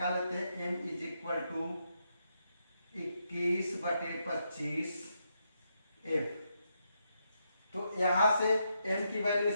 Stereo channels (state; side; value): inverted; both; correlation -0.81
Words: लेते हैं m is equal to 21/25 f। तो यहां से m की वैल्यू